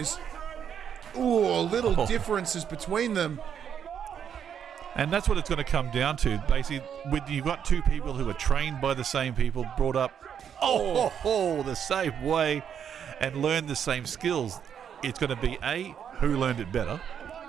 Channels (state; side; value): quieter; left; 8.3 dB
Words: Ooh, little differences between them. And that's what it's going to come down to. Basically, you've got two people who are trained by the same people, brought up the same way, and learned the same skills. It's going to be A, who learned it better,